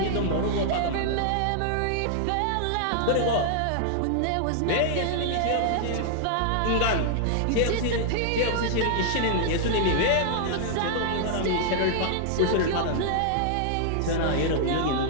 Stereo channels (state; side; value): different; both; correlation -0.01